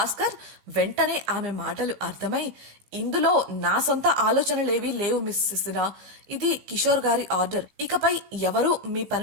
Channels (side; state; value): left; late; 16 ms